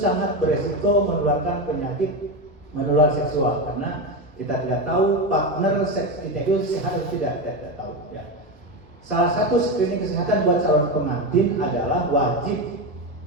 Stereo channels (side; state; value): both; normal; correlation 0.15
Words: beresiko menularkan penyakit menular seksual karena kita tidak tahu partner seks kita itu sehat atau tidak tahu. Ya. Salah satu screening kesehatan buat calon pengantin adalah wajib